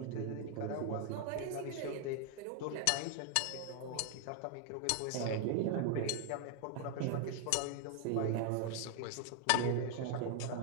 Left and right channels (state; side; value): different; both; correlation 0.00